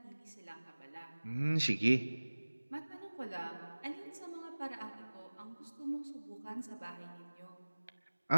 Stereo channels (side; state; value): both; inverted; correlation -1.00